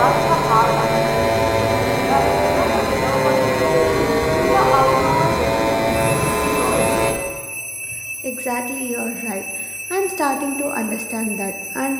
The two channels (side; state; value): both; identical; correlation 1.00